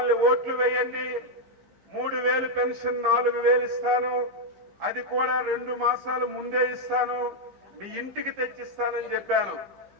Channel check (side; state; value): left; late; 15 ms